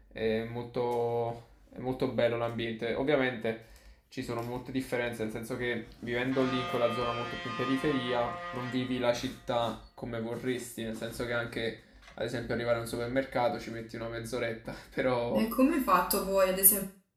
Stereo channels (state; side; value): identical; both; correlation 1.00